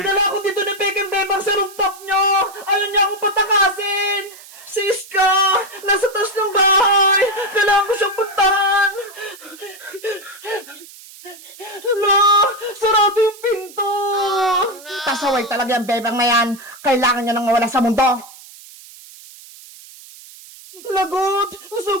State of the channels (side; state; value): right; noise; hiss, 19 dB below the sound